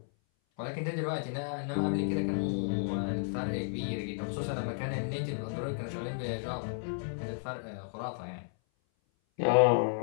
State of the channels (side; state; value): right; silent; 56 dB below the other